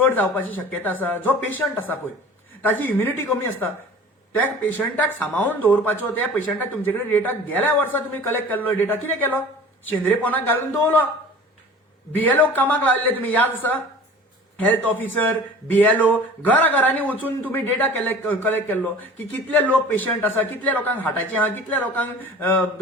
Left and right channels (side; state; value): both; normal; correlation 0.42